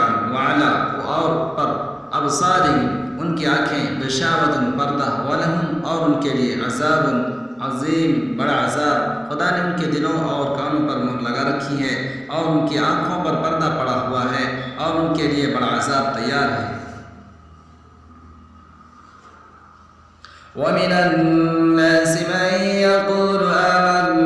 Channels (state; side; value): identical; both; correlation 1.00